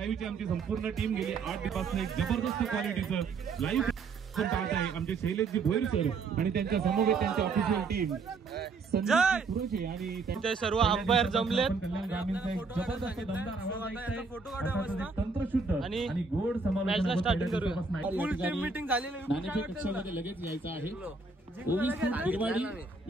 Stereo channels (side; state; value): left; quieter; 4.4 dB